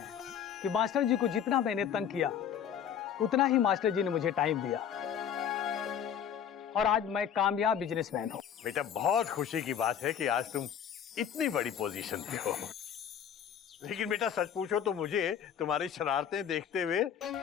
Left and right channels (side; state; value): right; quieter; 8.7 dB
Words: हैं कि मास्टर जी को जितना मैंने तंग किया उतना ही मास्टर जी ने मुझे टाइम दिया, और आज मैं कामयाब बिजनेसमैन हूँ। बेटा, बहुत खुशी की बात है कि आज तुम इतनी बड़ी पोजीशन पे हो। लेकिन बेटा सच पूछो तो मुझे तुम्हारी शरारतें देखते हुए